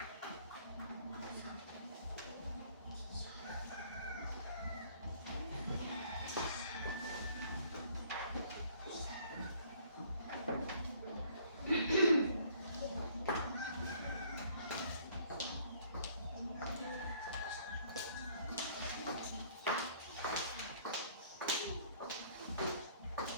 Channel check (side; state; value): both; inverted; correlation -0.59